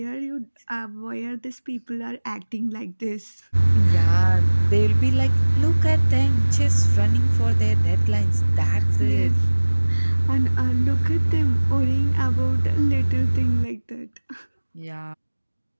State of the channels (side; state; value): both; inverted; correlation -1.00